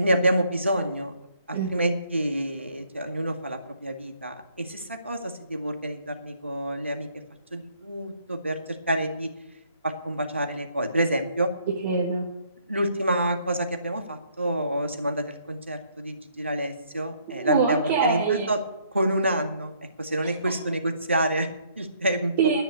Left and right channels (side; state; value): both; inverted; correlation -0.66